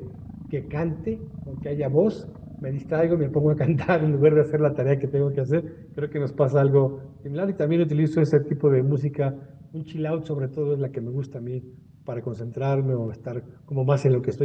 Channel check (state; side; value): identical; both; correlation 1.00